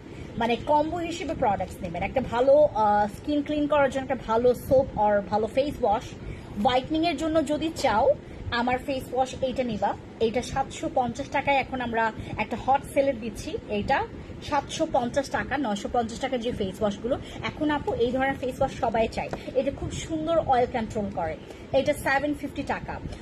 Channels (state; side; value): identical; both; correlation 1.00